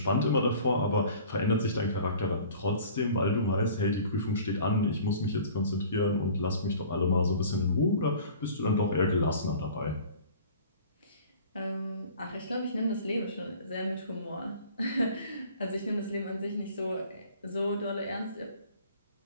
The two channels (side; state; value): both; inverted; correlation -0.46